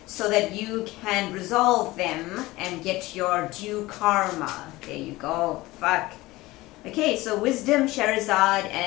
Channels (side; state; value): right; quieter; 19.4 dB